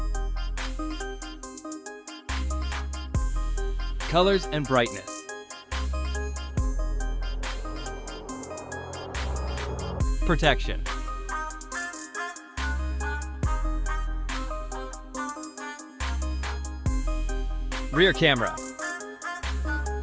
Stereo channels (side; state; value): both; identical; correlation 1.00